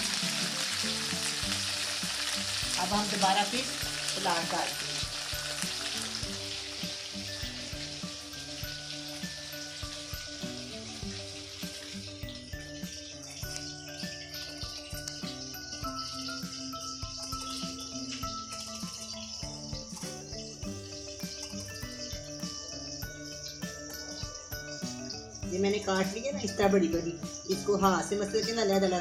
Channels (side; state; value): both; identical; correlation 1.00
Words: अब हम दोबारा फिर सलाद काटते हैं। ये मैंने काट लिया ना इस तरह बड़ी बड़ी, इसको हाथ से मसल के ना